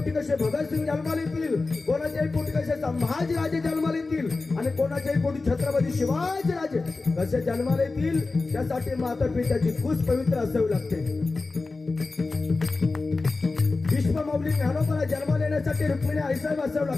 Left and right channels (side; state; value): right; quieter; 3.7 dB